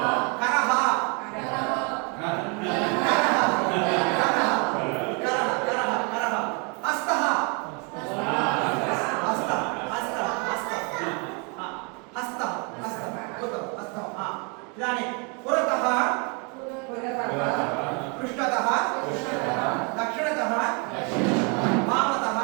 करः हस्तः इदानीं पुरतः पृष्ठतः दक्षिणतः वामतः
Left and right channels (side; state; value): left; quieter; 34.1 dB